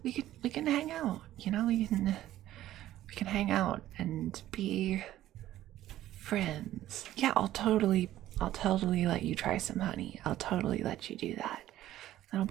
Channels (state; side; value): quieter; left; 13.7 dB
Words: we can hang out. You know, we can hang out and be friends. Yeah, I'll totally let you try some honey. I'll totally let you do that. That'll